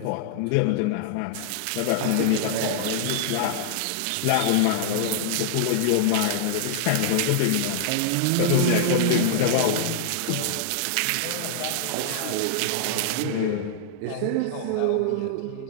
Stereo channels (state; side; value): different; both; correlation -0.01